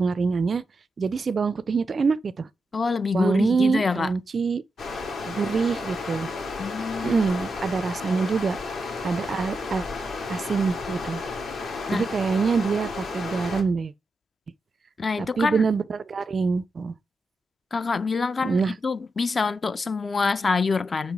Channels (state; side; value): normal; both; correlation 0.86